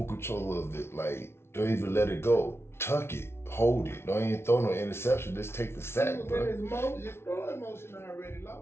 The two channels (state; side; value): late; right; 0.12 ms